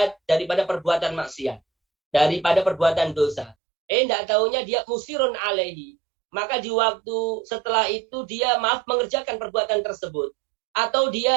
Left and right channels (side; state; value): left; drops out; at 3.6 s